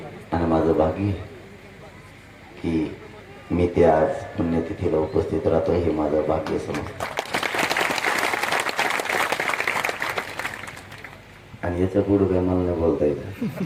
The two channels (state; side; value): identical; both; correlation 1.00